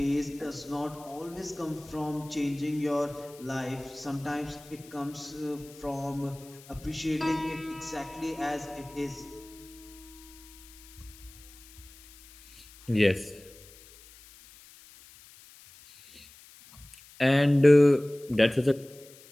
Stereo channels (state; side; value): noise; left; hiss, 22 dB below the sound